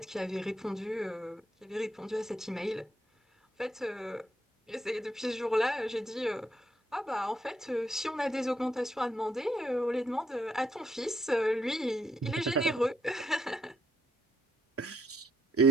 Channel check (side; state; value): both; normal; correlation 0.73